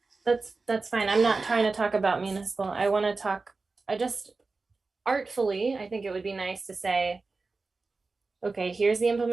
That's fine. I'm not trying to talk about municipal. I want to talk, I just artfully, I think it would be nice to say, okay, here's the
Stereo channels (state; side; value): quieter; left; 3.9 dB